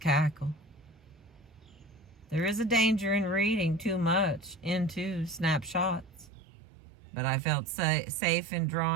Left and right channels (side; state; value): left; drops out; at 6.3 s